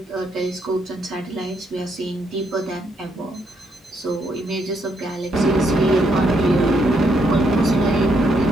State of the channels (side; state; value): both; normal; correlation 0.75